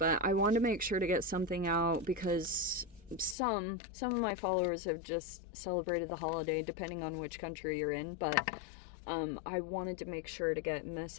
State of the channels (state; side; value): drops out; right; at 3.4 s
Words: I wanted to make sure to get something out because some of my followers have just celebrated the holiday, depending on which country you're in, but I wanted to make sure to get